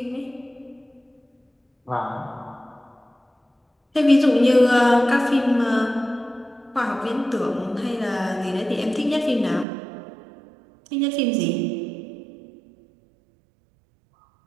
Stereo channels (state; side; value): drops out; left; at 9.7 s